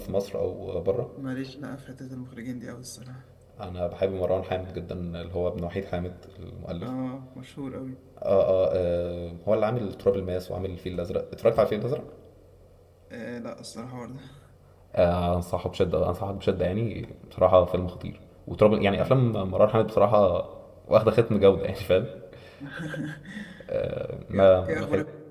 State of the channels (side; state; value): both; identical; correlation 1.00